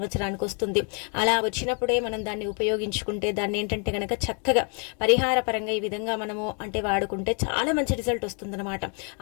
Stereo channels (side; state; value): right; quieter; 39.8 dB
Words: వస్తుంది. అలా వచ్చినప్పుడే మనం దాన్ని ఉపయోగించుకుంటే, దాన్ని ఏంటంటే కనుక చక్కగా పరిహార పరంగా ఈ విధంగా మనము అంటే వాడుకుంటే చాలా మంచి రిజల్ట్ వస్తుందన్నమాట.